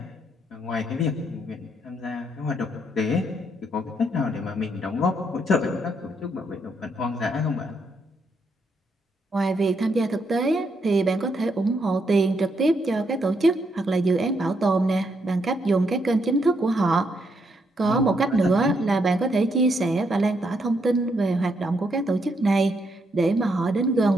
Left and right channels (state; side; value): normal; both; correlation 0.77